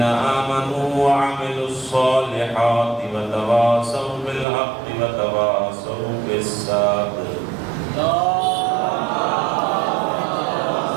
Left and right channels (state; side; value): drops out; left; at 4.5 s